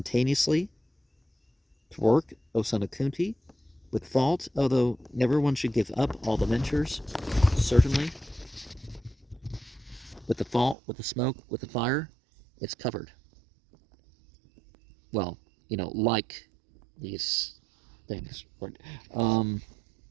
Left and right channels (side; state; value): left; drops out; at 10.8 s